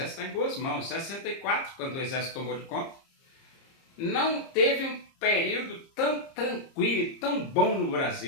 está em boas mãos. Em 64, quando o exército tomou de conta, não teve um período tão tranquilo e tão bom no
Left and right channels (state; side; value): late; right; 30 ms